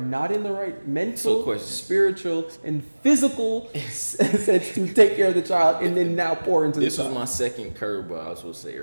in the right mental, spiritual, and physical sense to take care of the child, and then now pour into the child. This was my second curveball I was supposed to say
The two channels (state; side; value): inverted; both; correlation -1.00